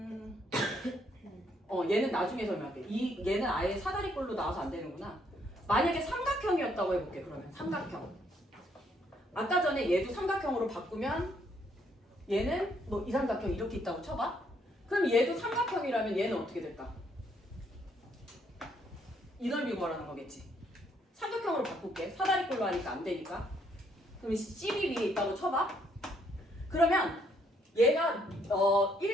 얘는 나중에 설명할게. 얘는 아예 사다리꼴로 나와서 안 되는구나. 만약에 삼각형이었다고 해볼게. 그러면 삼각형. 아까 전에 얘도 삼각형으로 바꾸면 얘는 뭐 이 삼각형 이렇게 있다고 쳐봐. 그럼 얘도 삼각형이라면 얘는 어떻게 될까? 이 넓이 구하라는 거겠지. 삼각형으로 바꿀게. 사다리꼴로 하니까 안 되니까. 그럼 CB 위에 있다고 쳐봐. 그러면 얘가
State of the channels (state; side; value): normal; both; correlation 0.70